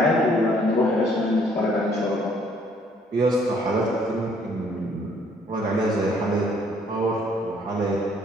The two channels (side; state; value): both; normal; correlation 0.63